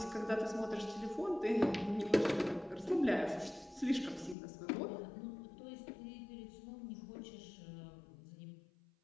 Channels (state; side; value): drops out; right; at 4.4 s